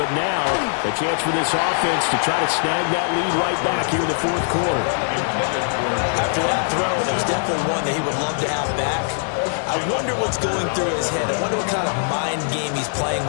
now a chance for this offense to try to snag that lead right back here in the fourth quarter. After that throw, there was definitely one that he would love to have back. I wonder what's going through his head. I wonder what kind of mind game he's playing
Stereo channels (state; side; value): silent; right; digital silence